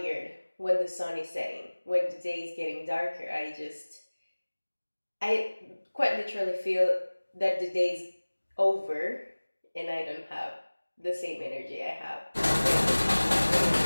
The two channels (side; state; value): both; inverted; correlation -1.00